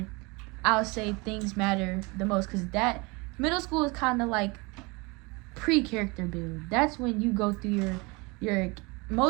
I'll say things matter the most. Because that middle school is kind of like pre-character build. That's when you go through your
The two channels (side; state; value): left; quieter; 26.9 dB